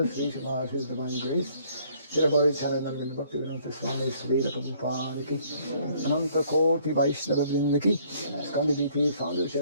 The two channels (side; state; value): both; inverted; correlation -0.62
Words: Sri Smarth, His Divine Grace, Shri Charanand Bhakti Vedanta Swami Sri Prabhupada ki, Ananta Koti Vaishnava Vrinda ki, Skandiviti Founder